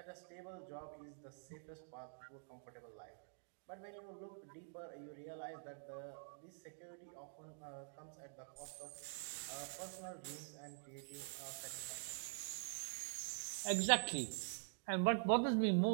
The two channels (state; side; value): silent; left; digital silence